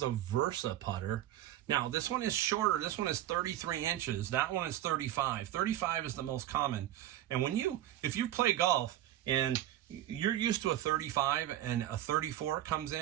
a Versa putter. Now, this one is shorter. This one is 33 inches. That one is 35. 35 is the most common. And if you play golf and you're used to a 35 and a 34 comes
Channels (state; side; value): quieter; left; 13.0 dB